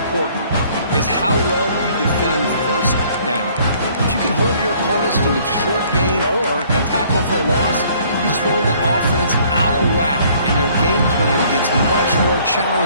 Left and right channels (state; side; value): inverted; both; correlation -0.59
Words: is how well you defend first down. If you can hold your opponents to a short gain or a tackle for a loss, you throw the offense out of whack, and their game plan gets much more